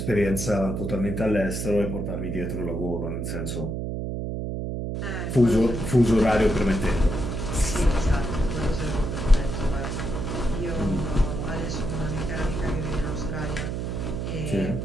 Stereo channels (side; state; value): right; noise; hum, 3 dB below the sound